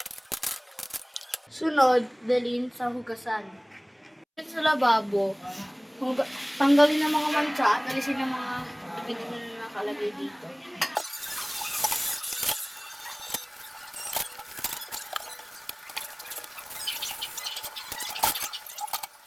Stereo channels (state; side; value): identical; both; correlation 1.00